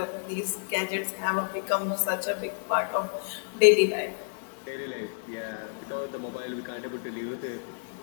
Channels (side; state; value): right; silent; 55 dB below the other